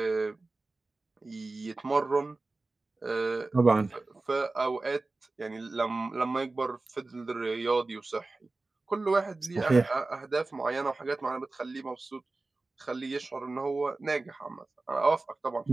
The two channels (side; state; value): left; quieter; 3.3 dB